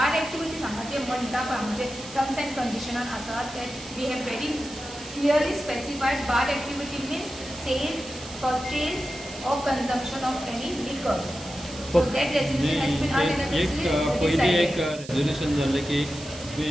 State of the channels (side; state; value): right; noise; hiss, 15 dB below the sound